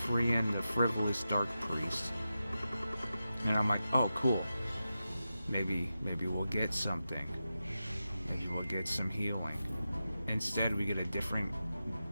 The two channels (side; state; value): both; inverted; correlation -0.91